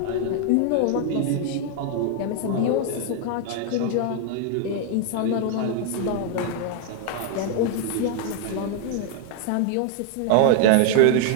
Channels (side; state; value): both; different; correlation 0.00